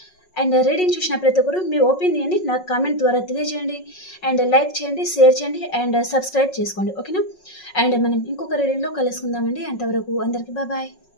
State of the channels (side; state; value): right; late; 5.4 ms